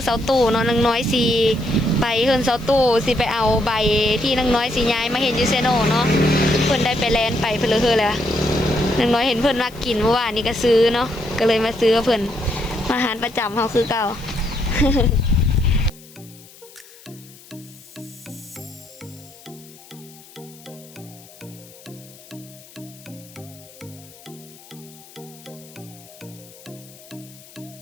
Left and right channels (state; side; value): noise; left; hiss, 22 dB below the sound